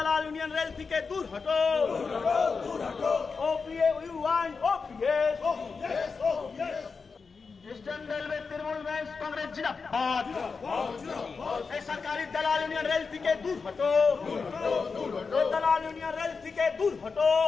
यूनियन रेल थी के दूर हटो। OPA, you want OPS? Eastern railway Trinamool men's Congress जिंदाबाद। ये सरकारी दलाल यूनियन रेल थी के दूर हटो। दलाल यूनियन रेल थी के दूर हटो।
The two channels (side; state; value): right; quieter; 4.9 dB